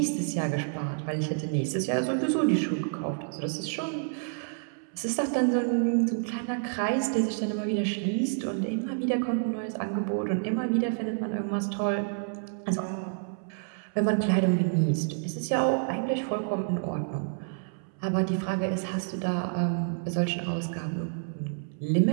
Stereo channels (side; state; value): left; silent; 59 dB below the other